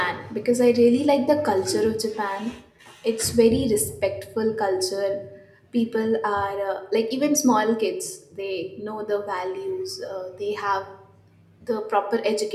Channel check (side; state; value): both; identical; correlation 1.00